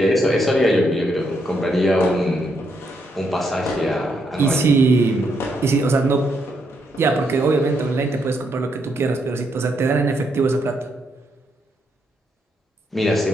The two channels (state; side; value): normal; both; correlation 0.77